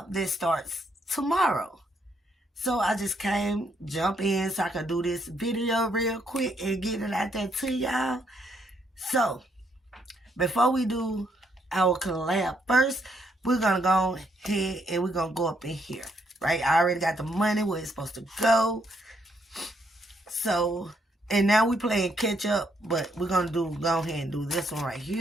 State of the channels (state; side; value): normal; both; correlation 0.73